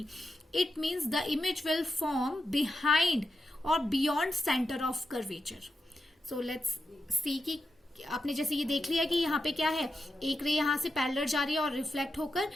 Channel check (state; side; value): normal; both; correlation 0.88